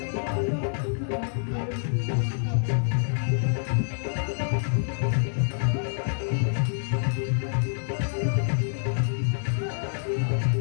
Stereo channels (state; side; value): silent; right; digital silence